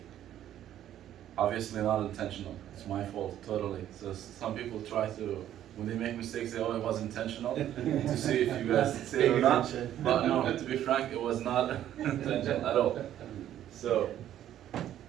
Obviously not intentional, it's my fault, totally. So some people try to, when they make mistakes, they it was intentional, to see if you guys say it or not. But no, to be frank, it was not intentional at all. So,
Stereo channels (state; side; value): quieter; left; 11.5 dB